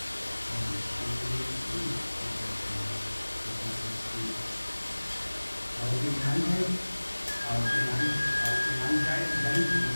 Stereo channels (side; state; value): both; inverted; correlation -1.00